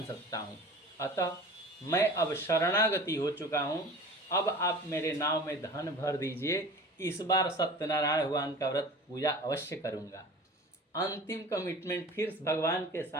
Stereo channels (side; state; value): both; normal; correlation 0.39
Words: सकता हूँ। अतः मैं अब शरणागति हो चुका हूँ, अब आप मेरे नाव में धन भर दीजिए, इस बार सत्यनारायण भगवान का व्रत पूजा अवश्य करूँगा। अंतिम कमिटमेंट फिर भगवान के